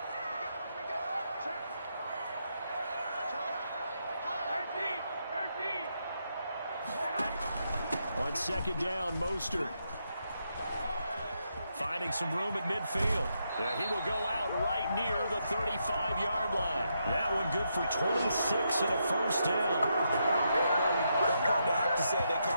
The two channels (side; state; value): both; inverted; correlation -0.81